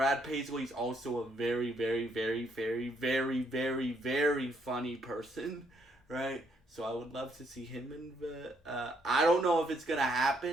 Paisley is also a very, very, very, very, very, very, very funny person, right? So I would love to see him in the... I don't know if it's going to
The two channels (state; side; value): normal; both; correlation 0.71